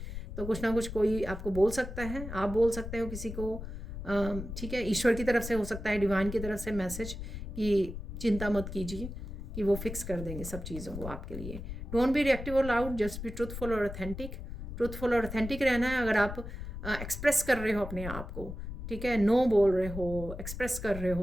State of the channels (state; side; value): noise; left; rumble, 8 dB below the sound